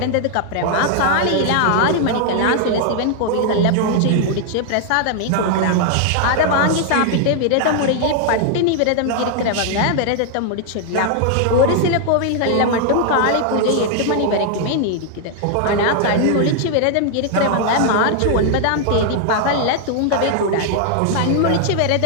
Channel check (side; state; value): both; different; correlation 0.00